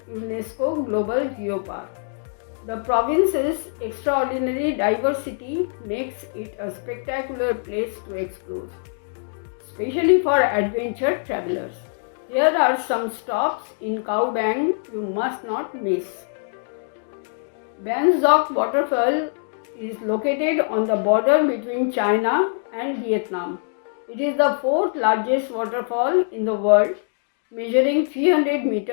UNESCO Global Geopark. The province's extraordinary diversity makes it a spectacular place to explore, especially for adventure travelers. Here are some stops in Cao Bang you must not miss. Ban Duc waterfall is located on the border between China and Vietnam. It is the 4th largest waterfall in the world, measuring 300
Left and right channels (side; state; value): right; silent; digital silence